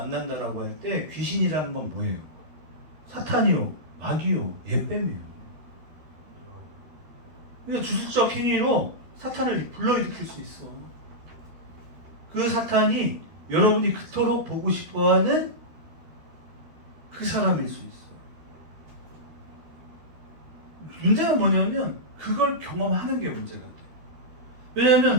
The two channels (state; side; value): late; left; 13 ms